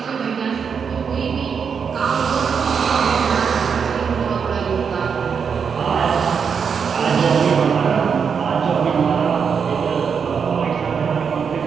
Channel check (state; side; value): quieter; left; 6.5 dB